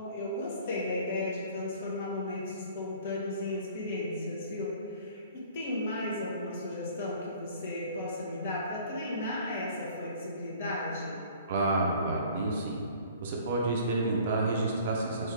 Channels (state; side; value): inverted; both; correlation -0.51